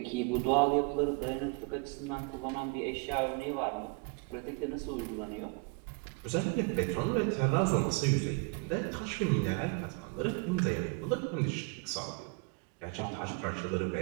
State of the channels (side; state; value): left; quieter; 31.5 dB